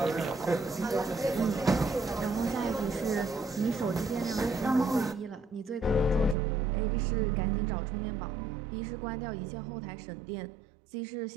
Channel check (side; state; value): left; drops out; at 6.4 s